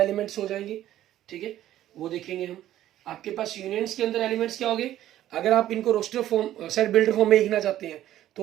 एलिमेंट्स हो जाएंगे, ठीक है, वो देखेंगे हम। आपके पास यूनियंस के अंदर एलिमेंट्स क्या हो गए, अगर आप इनको roster form set builder form में लिखना चाहते हैं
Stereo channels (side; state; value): left; quieter; 13.0 dB